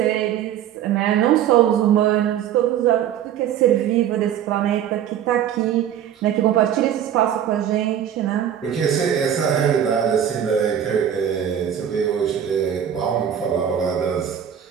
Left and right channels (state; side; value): quieter; left; 9.7 dB